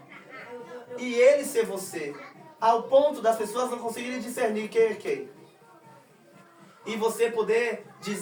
E ele ser você. Ao ponto das pessoas não conseguirem discernir quem é quem. E você poder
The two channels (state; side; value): identical; both; correlation 1.00